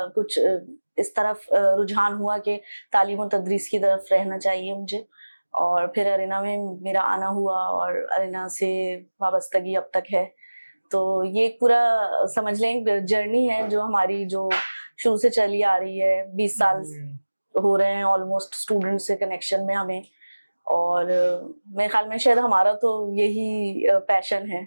कुछ इस तरफ रुझान हुआ कि तालीम और तदरीस की तरफ रहना चाहिए मुझे, और फिर अरीना में मेरा आना हुआ और अरीना से वाबस्तगी अब तक है। तो ये पूरा समझ लें एक जर्नी है जो हमारी जो शुरू से चली आ रही है। 20 साल हो रहे हैं ऑलमोस्ट स्टूडेंट से कनेक्शन में हमें, और मेरे ख्याल में शायद हमारा तो यही पैशन है।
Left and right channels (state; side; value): inverted; both; correlation -1.00